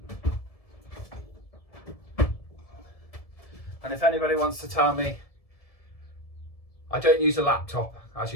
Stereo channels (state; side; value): late; right; 1.7 ms